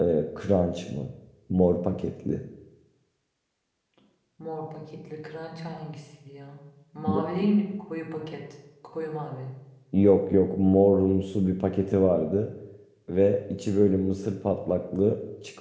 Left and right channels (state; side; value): identical; both; correlation 1.00